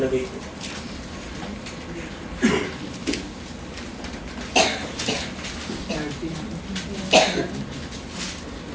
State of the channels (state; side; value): identical; both; correlation 1.00